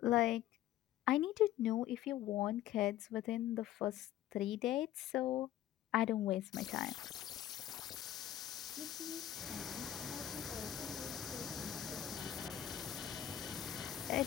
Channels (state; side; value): quieter; right; 12.3 dB